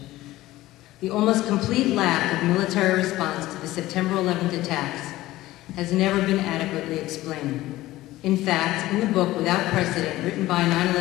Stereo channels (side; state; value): right; quieter; 16.7 dB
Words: The almost complete lack of military response to the September 11th attacks has never been adequately explained. In fact, in the book Without Precedent, written by